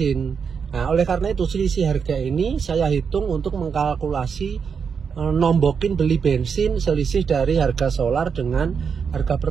Nah, oleh karena itu selisih harga ini saya hitung untuk mengkalkulasi nombokin beli bensin selisih dari harga solar dengan harga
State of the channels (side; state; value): left; quieter; 6.3 dB